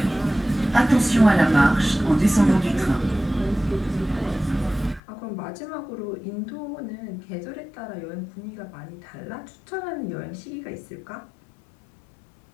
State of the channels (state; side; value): drops out; right; at 5.0 s